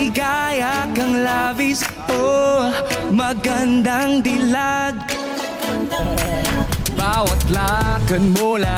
kang labis. Oh, magandang dilag. Bawat lakad mo,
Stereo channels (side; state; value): both; identical; correlation 1.00